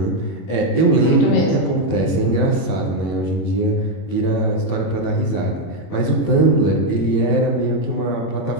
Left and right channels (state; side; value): late; right; 21 ms